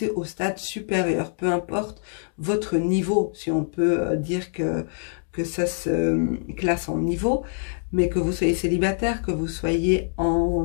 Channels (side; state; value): right; silent; digital silence